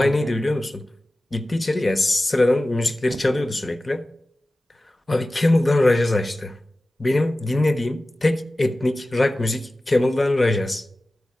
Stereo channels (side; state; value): both; normal; correlation 0.96